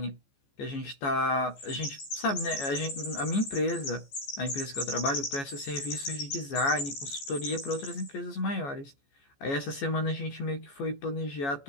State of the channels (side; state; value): right; late; 14 ms